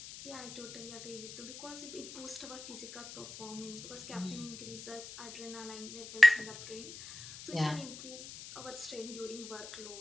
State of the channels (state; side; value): noise; left; hiss, 12 dB below the sound